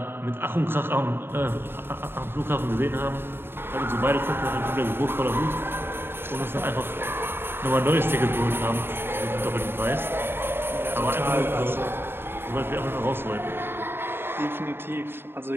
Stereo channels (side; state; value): left; late; 0.11 ms